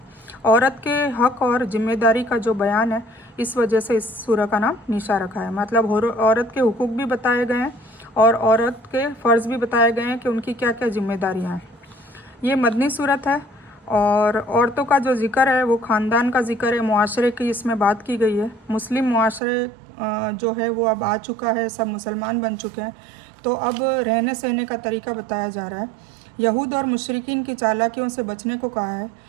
औरत के हक और जिम्मेदारी का जो बयान है, इस वजह से इस सूरह का नाम निशा रखा है। मतलब औरत के हुकूक भी बताए गए हैं और औरत के फ़र्ज़ भी बताए गए हैं कि उनकी क्या क्या जिम्मेदारियां हैं। ये मदनी सूरत है और औरतों का जो ज़िक्र है वो ख़ानदान का ज़िक्र है, मुआशरे की इसमें बात की गई है। मुस्लिम मुआशरे जो है वो अब आ चुका है, सब मुसलमान बन चुके हैं। तो अब रहने सहने का तरीका बताया जा रहा है। यहूद और मुशरिकीन की चालाकियों से बचने को कहा है।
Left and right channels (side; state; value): left; drops out; at 19.4 s